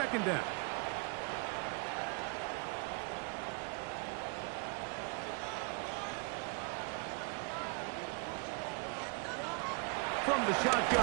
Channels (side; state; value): left; quieter; 31.9 dB